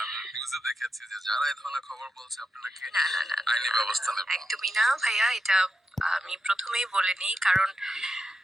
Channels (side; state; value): both; normal; correlation 0.88